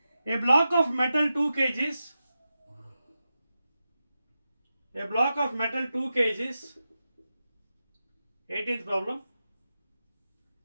A block of metal 2 kgs. A block of metal 2 kgs. 18th problem.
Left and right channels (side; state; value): both; inverted; correlation -0.91